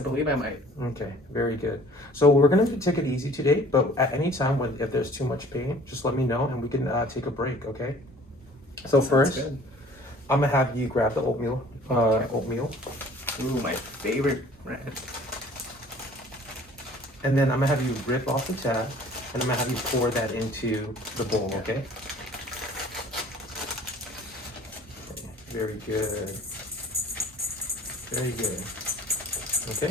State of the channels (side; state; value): both; normal; correlation 0.51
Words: believe I might. Okay, very good. So we're gonna take it easy today, but at any time if there's too much pain, just let me know and we can take a break, okay? So Sounds first, good. I'm gonna have you grab the oatmeal. Okay. Oatmeal, Ooh, my favorite brand. and then I'm gonna have you rip off the tab, and I'm gonna have you pour that into the bowl, okay? Very good. Very good.